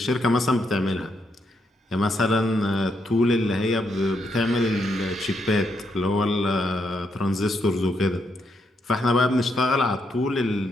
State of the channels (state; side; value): normal; both; correlation 0.78